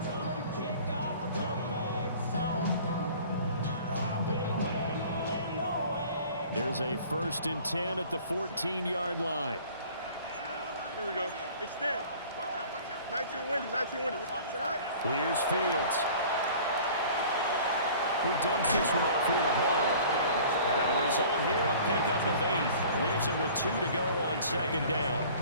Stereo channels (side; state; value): both; inverted; correlation -0.47